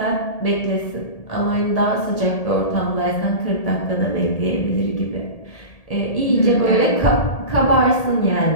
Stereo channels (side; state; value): right; late; 1.8 ms